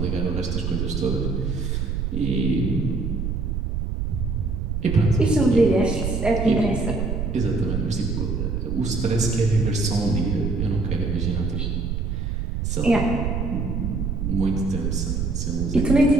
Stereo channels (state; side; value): noise; right; rumble, 1 dB below the sound